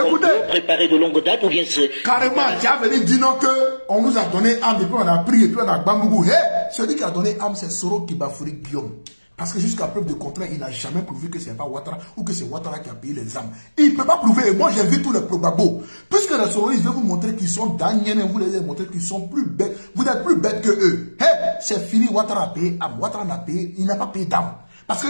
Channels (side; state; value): both; inverted; correlation -1.00